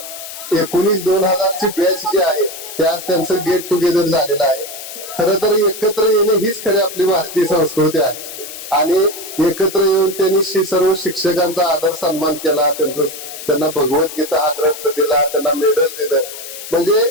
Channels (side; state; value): left; noise; hiss, 11 dB below the sound